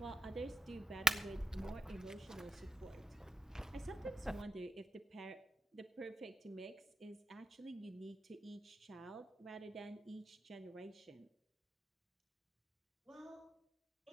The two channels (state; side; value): normal; both; correlation 0.90